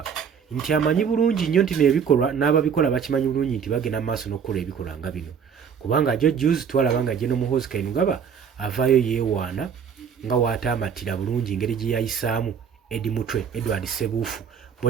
nti amanyi bulungi nnyo nti n'ebikolwa n'ababikola bakimanyi bulungi nti bagenda mu maaso n'okukola ebikolwa nga bino, kubanga jo juzi twalaba nga General Muhoozi Kainerugaba avaayo yeewaana nga waataamatira bulungi engeri gye yayisaamu Edward Ssebuufu,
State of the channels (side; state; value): left; quieter; 7.1 dB